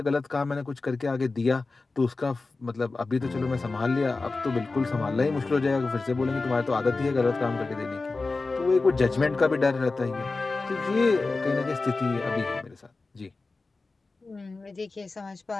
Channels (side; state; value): right; quieter; 3.7 dB